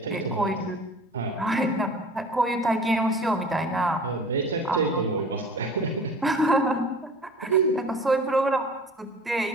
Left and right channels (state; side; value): normal; both; correlation 0.43